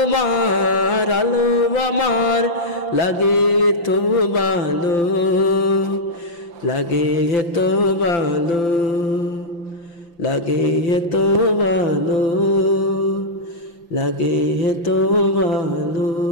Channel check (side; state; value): right; late; 5.9 ms